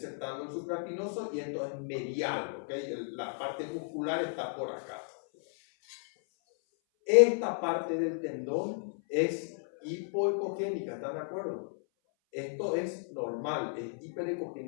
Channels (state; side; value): silent; right; 55 dB below the other